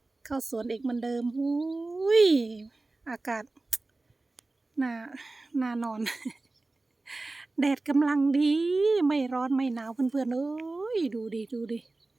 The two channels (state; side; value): quieter; left; 3.2 dB